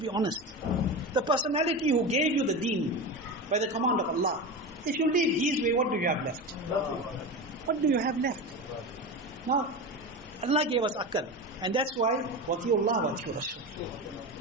honest. The personality who gave you the deen by the command of Allah, if you leave his way, what do you have left? What do you have left? Now, Allah gave us akal. And that's why, wati'ullah wati'ur Rasul.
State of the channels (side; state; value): both; normal; correlation 0.24